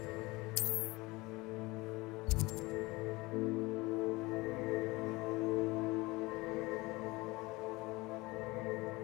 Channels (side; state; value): right; quieter; 22.3 dB